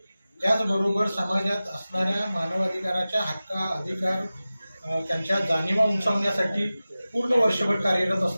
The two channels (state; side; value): inverted; both; correlation -0.96